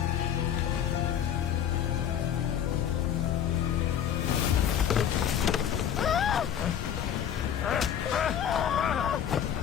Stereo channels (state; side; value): quieter; right; 9.4 dB